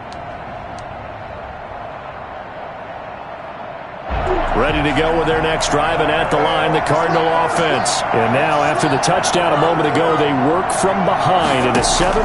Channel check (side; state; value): both; identical; correlation 1.00